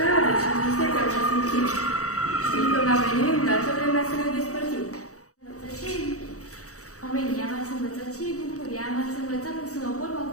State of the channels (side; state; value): right; late; 0.65 ms